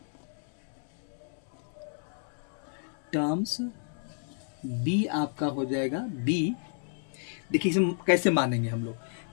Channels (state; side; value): silent; right; 57 dB below the other